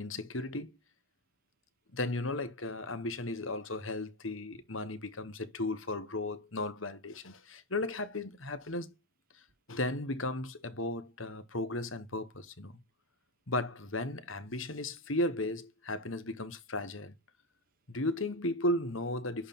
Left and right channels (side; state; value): both; normal; correlation 0.10